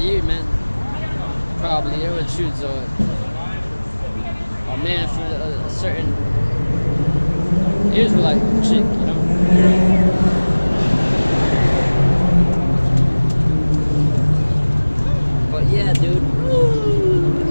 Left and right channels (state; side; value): inverted; both; correlation -1.00